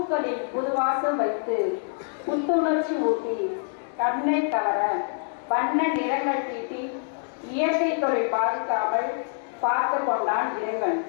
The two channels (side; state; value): right; silent; digital silence